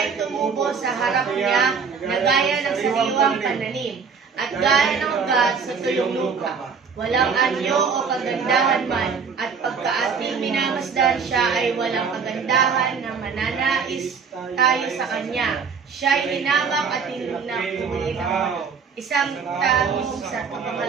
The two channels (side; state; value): left; quieter; 5.8 dB